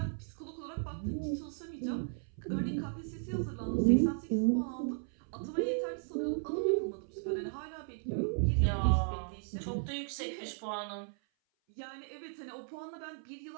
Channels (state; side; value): silent; left; 54 dB below the other